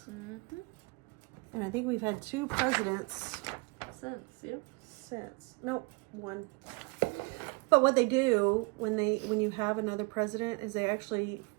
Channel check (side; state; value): left; quieter; 28.0 dB